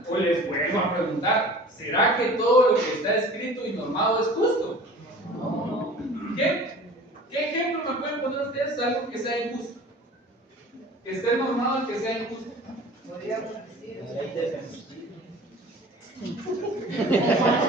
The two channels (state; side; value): normal; both; correlation 0.43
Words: pues les vuelvo a preguntar, ¿será que todo lo que está escrito y normado es justo? ¿Qué ejemplo me pueden poner ustedes de algo que sea injusto? Que esté normado y que sea injusto.